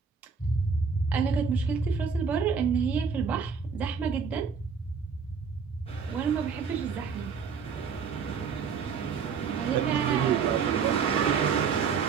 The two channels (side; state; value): left; quieter; 6.0 dB